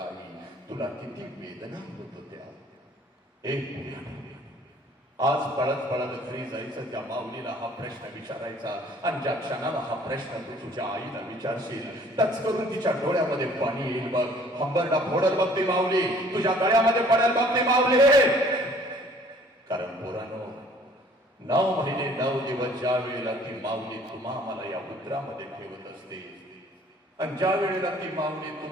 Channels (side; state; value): both; normal; correlation 0.55